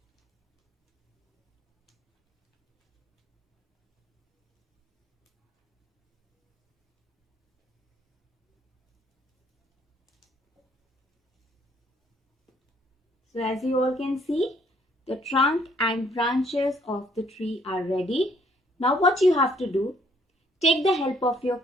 So as you all can see, the trunk and branches of the tree are ready. Now what you have to do, take the help of your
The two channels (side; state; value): both; normal; correlation 0.65